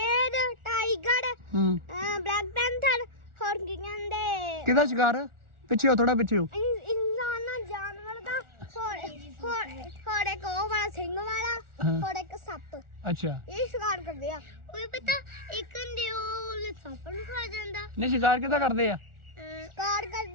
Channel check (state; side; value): late; left; 1.4 ms